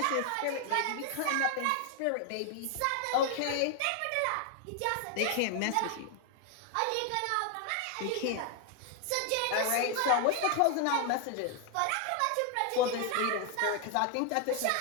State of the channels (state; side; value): different; both; correlation 0.00